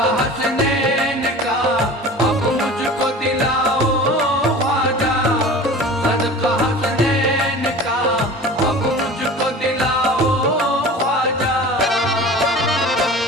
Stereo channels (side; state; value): both; normal; correlation 0.38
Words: हसनैन का अब मुझको दिलाओ ख्वाजा। सदका हसनैन का अब मुझको दिलाओ ख्वाजा।